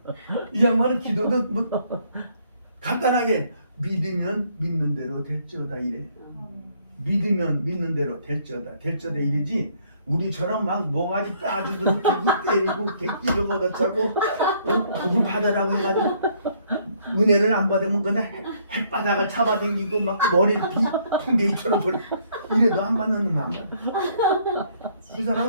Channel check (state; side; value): inverted; both; correlation -0.66